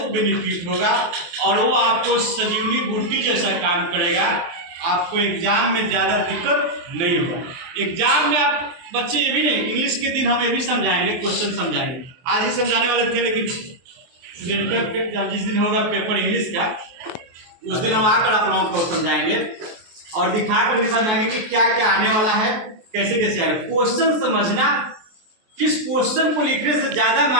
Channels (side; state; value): left; late; 23 ms